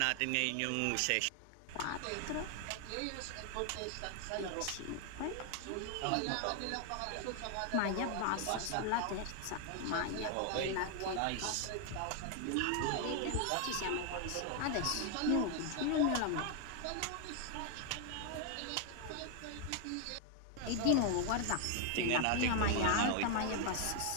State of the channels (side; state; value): both; different; correlation 0.00